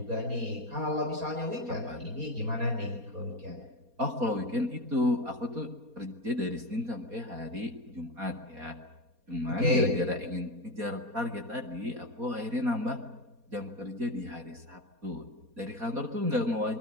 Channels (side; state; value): left; late; 4.2 ms